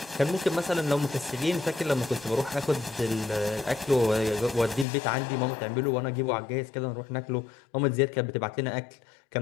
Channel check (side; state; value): right; drops out; at 4.9 s